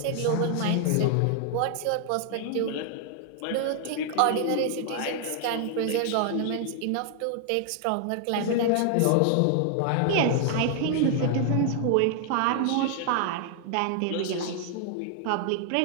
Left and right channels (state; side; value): different; both; correlation 0.00